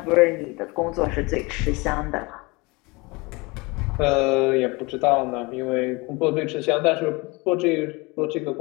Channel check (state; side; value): quieter; right; 25.7 dB